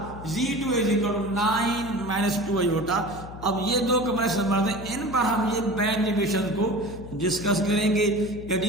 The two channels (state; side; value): noise; left; hum, 13 dB below the sound